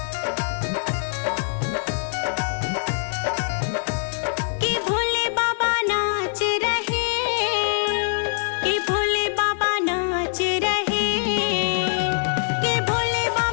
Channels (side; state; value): right; silent; 61 dB below the other